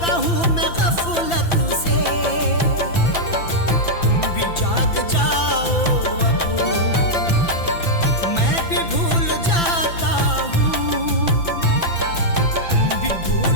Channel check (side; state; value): right; late; 5.9 ms